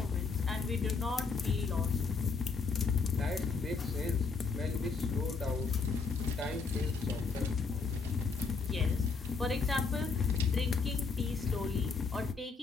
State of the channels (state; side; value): quieter; right; 4.8 dB